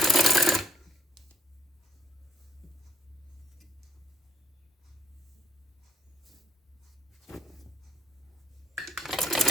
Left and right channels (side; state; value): both; normal; correlation 0.67